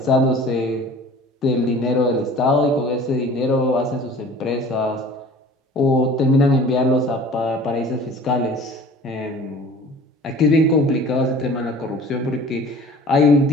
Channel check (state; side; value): normal; both; correlation 0.45